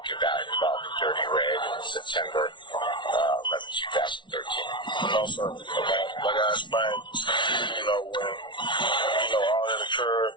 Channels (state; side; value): late; right; 0.24 ms